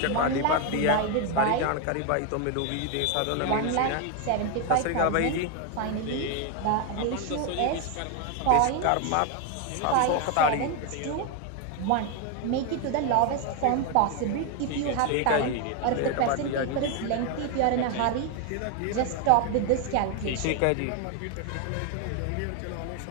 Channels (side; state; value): both; different; correlation 0.01